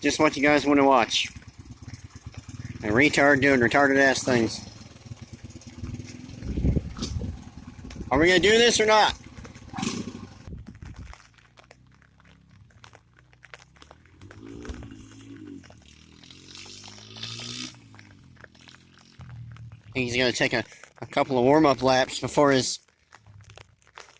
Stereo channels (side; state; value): both; identical; correlation 1.00